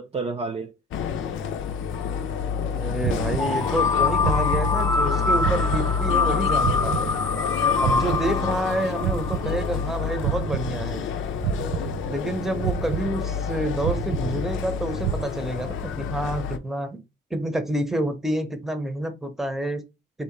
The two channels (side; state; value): both; normal; correlation 0.46